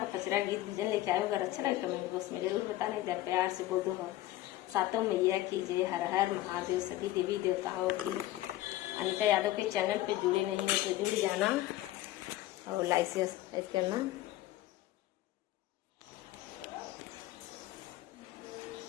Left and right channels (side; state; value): right; quieter; 15.6 dB